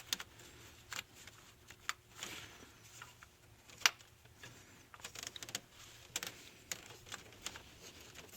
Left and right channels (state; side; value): identical; both; correlation 1.00